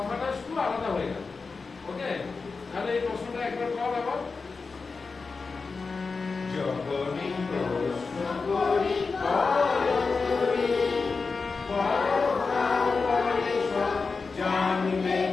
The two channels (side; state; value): right; quieter; 4.5 dB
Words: শুধু আলাদা হয়ে গেল। ওকে, তাহলে এই প্রশ্নটা একবার কর আবার। যখনই প্রশ্ন করি বড় তুমি, বড় হও পরে সব জানবে